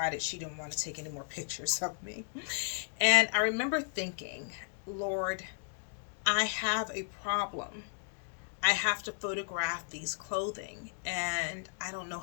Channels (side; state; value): right; silent; 55 dB below the other